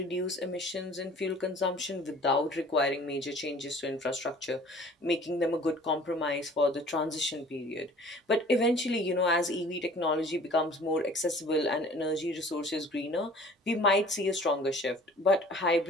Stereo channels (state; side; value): normal; both; correlation 0.49